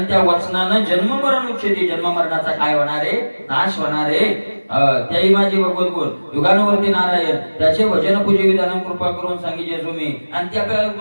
त्या वचनानं जन्म मरण उच्छेदी जन्म मरणाचा काय होणार आहे नाश होणार आहे त्याही माझे भगवत गुण युगानुवर्ती नारायण त्याचे भजन पूजे विधान कृपा करून सांगितले तुम्ही आणि त्या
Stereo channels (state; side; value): inverted; both; correlation -1.00